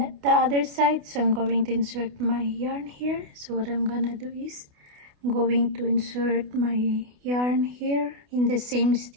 other side. So I'm going to insert my yarn here. So what I'm gonna do is I'm going to insert my yarn here in the same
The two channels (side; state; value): left; late; 28 ms